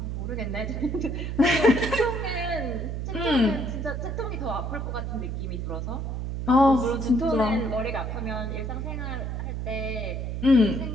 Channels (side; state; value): right; noise; hum, 3 dB below the sound